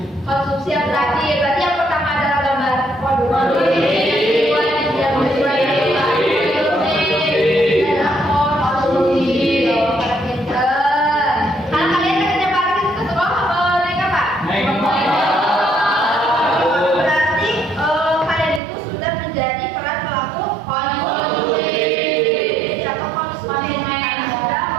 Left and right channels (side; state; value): left; drops out; at 18.6 s